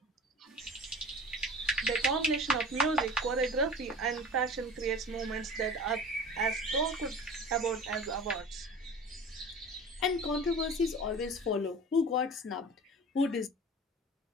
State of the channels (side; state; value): both; normal; correlation 0.38